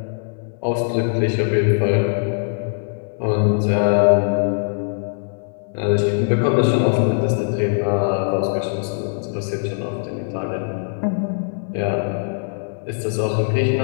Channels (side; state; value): right; silent; 63 dB below the other